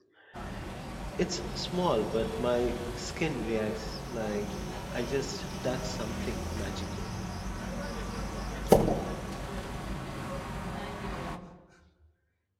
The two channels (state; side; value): identical; both; correlation 1.00